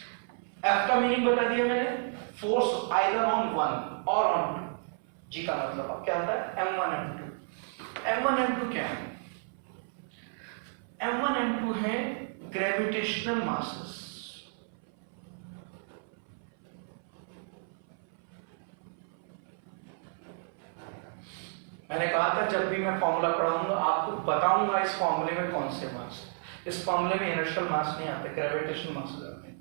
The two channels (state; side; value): silent; left; 57 dB below the other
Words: एफ का मीनिंग बता दिया मैंने, फोर्स आइदर ऑन वन और ऑन टू। जी का मतलब अब क्या आता है, M1 M2। M1 M2 क्या है? M1 M2 है ग्रेविटेशनल मासेस। मैंने कहा था जब भी मैं फॉर्मूला पढ़ाऊंगा आपको बताऊंगा इस फॉर्मूले में कौन से मास है। इस फॉर्मूले में इनर्शियल मास नहीं आते, ग्रेविटेशनल मास आते हैं,